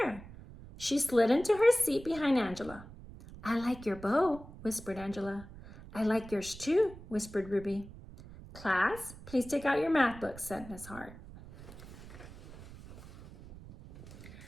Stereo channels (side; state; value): right; noise; rumble, 16 dB below the sound